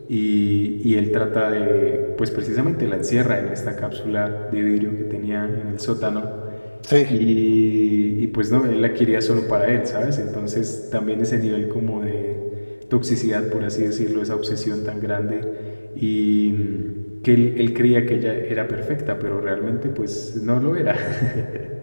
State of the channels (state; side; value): inverted; both; correlation -1.00